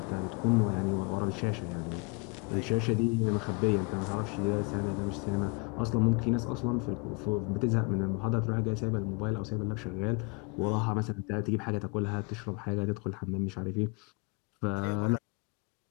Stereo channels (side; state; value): right; quieter; 30.7 dB